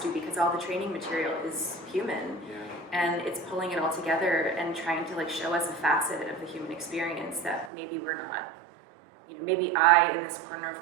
because all the training material is human. And it's pulling it all together and trying to show us a facet of the human experience that maybe we're not, maybe I, in this corner of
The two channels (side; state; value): left; drops out; at 7.7 s